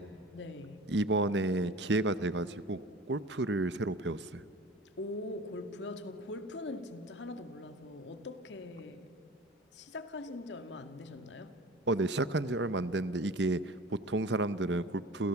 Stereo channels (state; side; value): normal; both; correlation 0.39